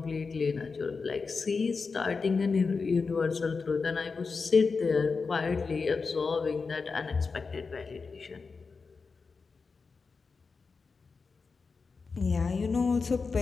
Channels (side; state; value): right; quieter; 4.7 dB